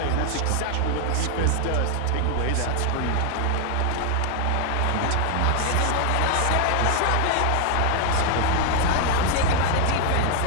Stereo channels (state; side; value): different; both; correlation 0.01